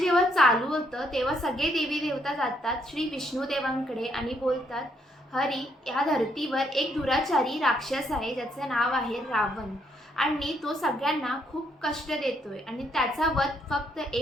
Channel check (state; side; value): normal; both; correlation 0.72